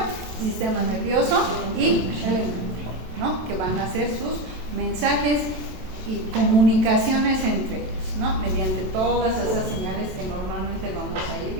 Sistema nervioso y el endocrino, ¿no? Que van a hacer sus mensajes y comunicaciones entre ellos, ¿no? Mediante todas esas señales que normalmente vamos a ir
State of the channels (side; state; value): left; late; 27 ms